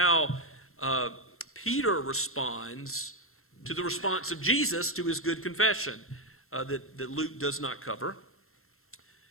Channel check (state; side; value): late; right; 0.62 ms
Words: Peter responds to the response of Jesus to his good confession that Luke does not cover.